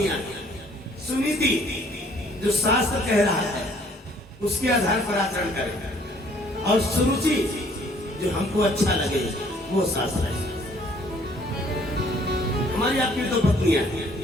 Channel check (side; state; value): both; normal; correlation 0.60